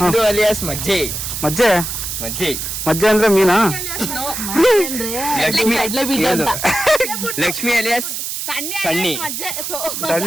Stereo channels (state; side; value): noise; right; hiss, 5 dB below the sound